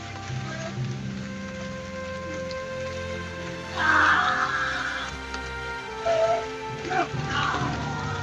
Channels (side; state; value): both; identical; correlation 1.00